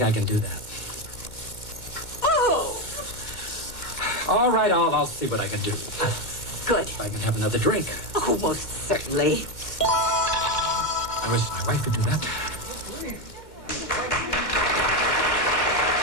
I can do that. Oh! All right, I'll see what I can do. Good. If I can have another drink. Oh, most certainly. I wish my wife could do that.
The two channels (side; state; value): right; late; 2.1 ms